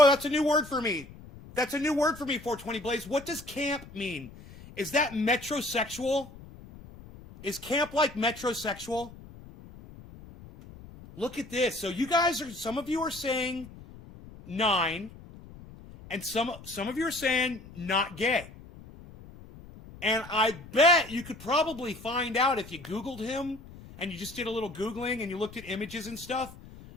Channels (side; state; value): left; noise; rumble, 18 dB below the sound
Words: that's a new word for me. That's a new word for me, 420 Blaze. What does camp mean? Is that metrosexual? Is camp like metrosexual? Look at this. So some of you are saying 9... And some of you are saying not gay. And I bet you could probably find out if you Googled him and you just did a little Googling and you looked at images and stuff.